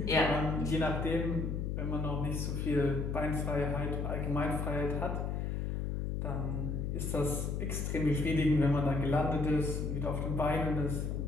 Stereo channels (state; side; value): noise; left; hum, 1 dB below the sound